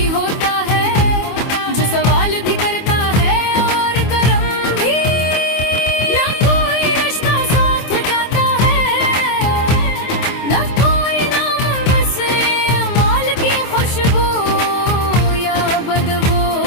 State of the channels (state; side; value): late; right; 24 ms